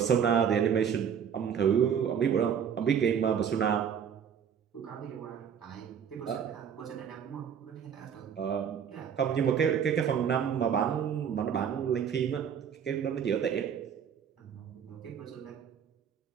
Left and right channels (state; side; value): quieter; left; 7.9 dB